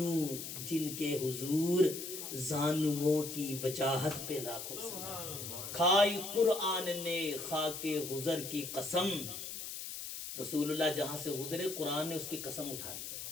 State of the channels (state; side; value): noise; left; hiss, 7 dB below the sound